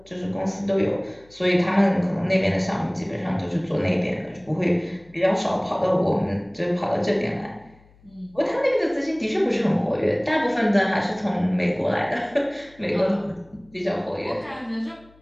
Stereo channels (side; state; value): left; noise; hum, 28 dB below the sound